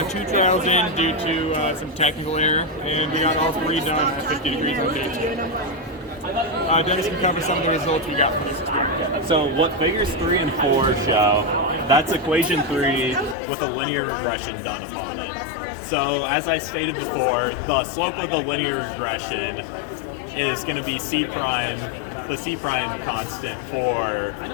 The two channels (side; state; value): right; drops out; at 13.4 s